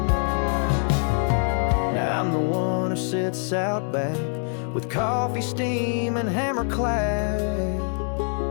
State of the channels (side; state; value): right; silent; 57 dB below the other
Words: Now I'm the one who sits out back with coffee, steam, and hammer clad.